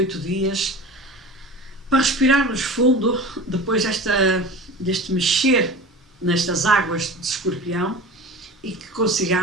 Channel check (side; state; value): both; normal; correlation 0.35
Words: dias para respirarmos fundo depois deste mexer nestas águas de Escorpião, e que